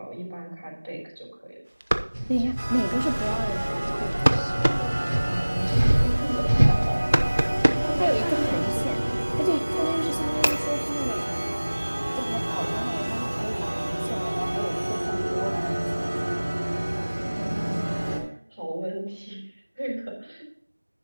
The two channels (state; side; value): inverted; both; correlation -1.00